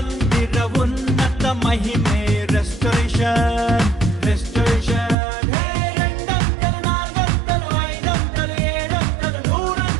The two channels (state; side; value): drops out; left; at 5.2 s